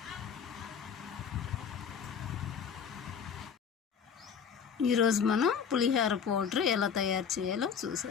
ఈరోజు మనం పులిహోర పౌడర్ ఎలా తయారు చేయాలో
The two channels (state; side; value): quieter; right; 7.0 dB